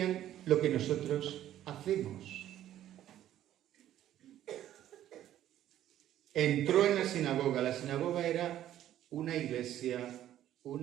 lo que nosotros hacemos. Entró en la sinagoga. La sinagoga era una iglesia,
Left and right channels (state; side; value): quieter; left; 12.2 dB